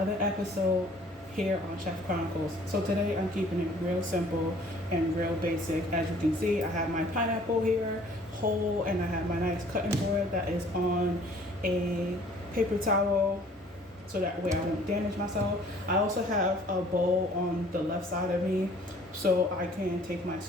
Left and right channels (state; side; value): normal; both; correlation 0.54